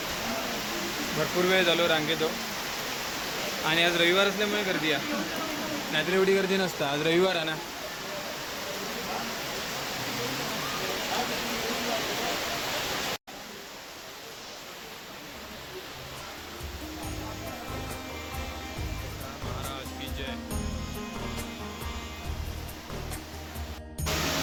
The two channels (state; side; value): identical; both; correlation 1.00